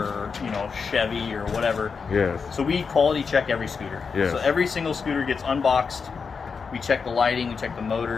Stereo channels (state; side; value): quieter; right; 5.5 dB